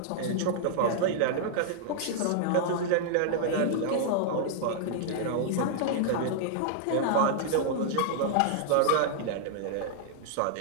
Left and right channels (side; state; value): both; different; correlation -0.01